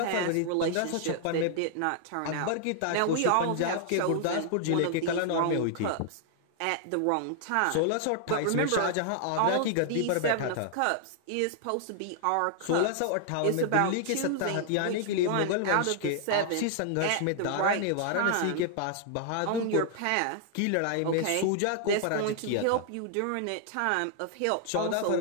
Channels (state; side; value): different; both; correlation -0.01